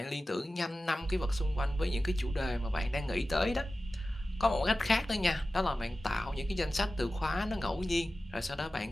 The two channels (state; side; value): normal; both; correlation 0.95